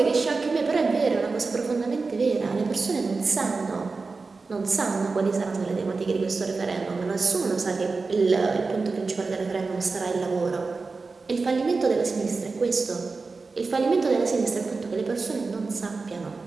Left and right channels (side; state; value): left; quieter; 4.1 dB